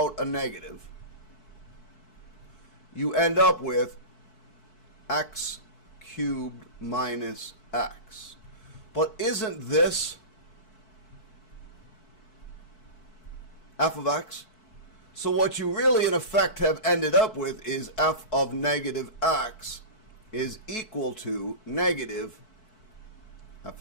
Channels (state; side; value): late; right; 4.6 ms